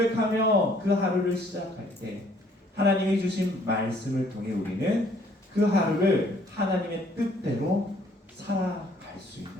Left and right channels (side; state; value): both; normal; correlation 0.61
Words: 그 하루를 시작할 때 하나님이 주신 말씀을 통해 우리는 그 하루를 하나님의 뜻대로 살아갈 수 있는